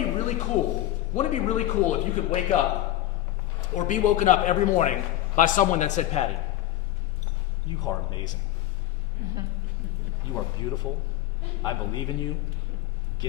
be really cool? Wouldn't it be really cool if you could wake up or be woken up every morning by someone that said, Patty, you are amazing. You are beautiful. I believe in you.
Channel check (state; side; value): quieter; right; 14.2 dB